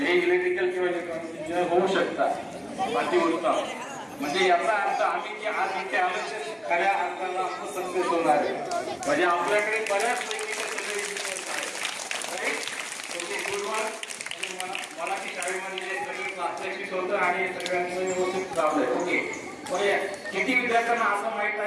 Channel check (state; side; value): identical; both; correlation 1.00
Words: हे इलेक्ट्रिकल किंवा इलेक्ट्रॉनिक इंजिनियर होऊ शकतात. अतिउत्तम. म्हणजे याचा अर्थ आम्ही जे आज इथे आलो ते खऱ्या अर्थाला आपण सक्सेस होणार आहे. म्हणजे आपल्याकडे बऱ्याचपैकी मराठी शाळेमध्ये सगळे प्रात्यक्षिक होतं आणि सगळ्यांचं व्यवस्थित लावलंय. ओके, किती विद्यार्थ्यांना असं माहित